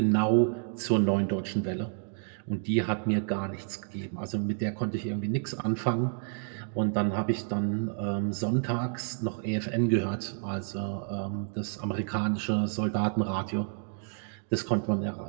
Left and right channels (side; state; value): left; silent; 58 dB below the other